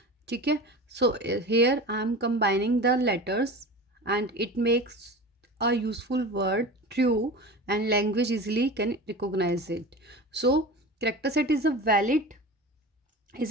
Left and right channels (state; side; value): normal; both; correlation 0.33